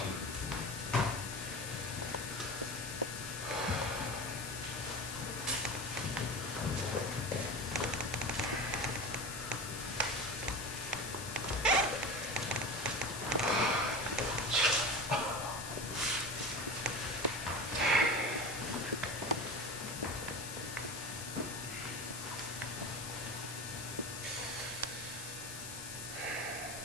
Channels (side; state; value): left; noise; hiss, 8 dB below the sound